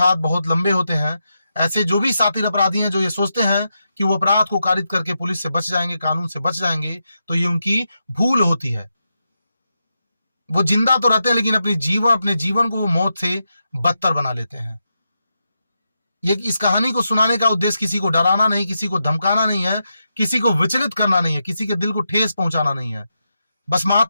बहुत लंबे होते हैं। ऐसे जो भी सातिर अपराधी हैं जो ये सोचते हैं कि वो अपराध को कारित करके पुलिस से बच जाएंगे, कानून से बच जाएंगे, तो ये उनकी भूल होती है। वो जिंदा तो रहते हैं लेकिन अपने जीवन को वो मौत से बदतर बना लेते हैं। ये इस कहानी को सुनाने का उद्देश्य किसी को डराना नहीं, किसी को धमकाना नहीं है, किसी को विचलित करना नहीं है, किसी के दिल को ठेस पहुंचाना नहीं है। बस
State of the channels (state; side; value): inverted; both; correlation -0.86